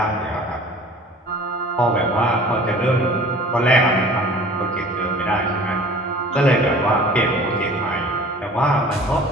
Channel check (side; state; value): both; normal; correlation 0.46